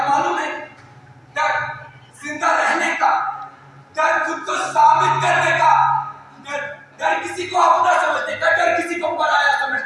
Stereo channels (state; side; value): identical; both; correlation 1.00